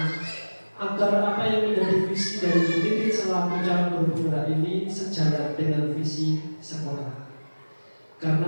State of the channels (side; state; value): both; inverted; correlation -1.00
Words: agar apa yang menjadi visi dari Bu Titik selaku calon guru penggerak ini sejalan dengan visi sekolah.